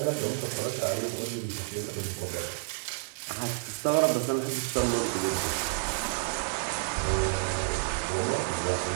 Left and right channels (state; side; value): silent; left; 58 dB below the other